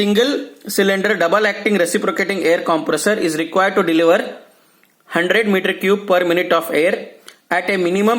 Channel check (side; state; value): both; identical; correlation 1.00